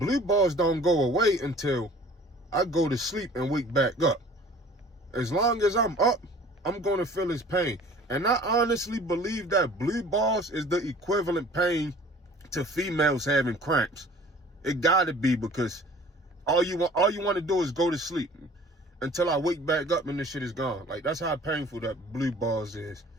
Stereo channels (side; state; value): both; normal; correlation 0.48